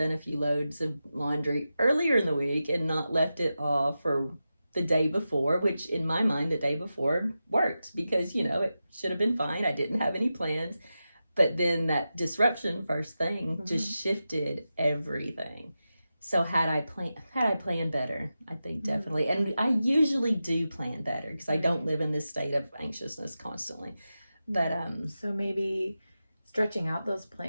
a few loads of laundry earlier in the week and not left it off for the day before, which in my mind, the day before worked because, it should have been fine. I didn't have any plans. But then that disruption first thing just shifted everything. So had I planned better, I think definitely. And I usually do plan better because I don't live in this state of anxiousness constantly. But so maybe stretching out those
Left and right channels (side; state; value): both; inverted; correlation -0.92